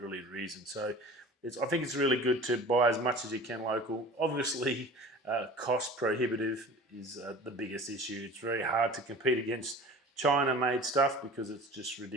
reason. So I think it's really good to buy as much as you can local. Obviously, cost prohibitive is the biggest issue. It's very hard to compete against China-made stuff because it's just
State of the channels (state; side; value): normal; both; correlation 0.40